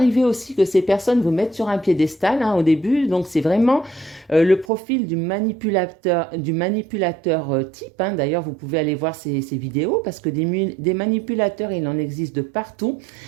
aussi que ces personnes vous mettent sur un piédestal au début. Donc, c'est vraiment le profil du manipulateur type. D'ailleurs, vous pouvez aller voir ces vidéos parce que des manipulateurs, il en existe de partout,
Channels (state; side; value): drops out; left; at 4.7 s